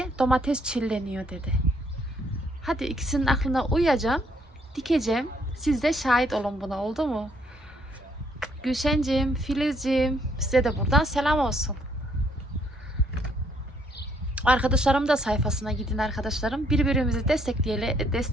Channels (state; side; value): normal; both; correlation 0.68